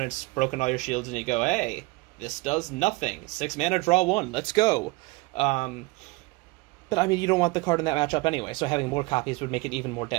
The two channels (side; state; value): left; quieter; 23.7 dB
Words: broken all your shields and you go, hey, this does nothing. 6 mana, draw 1, let's go. But, I mean, you don't want the card in that matchup anyway, so having more copies would make it even more